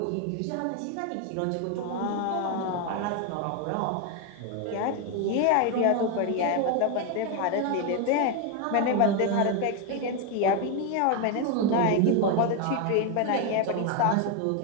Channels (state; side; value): different; both; correlation 0.01